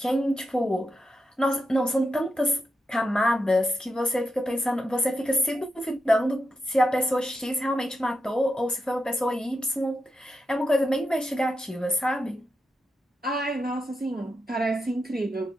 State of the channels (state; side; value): normal; both; correlation 0.86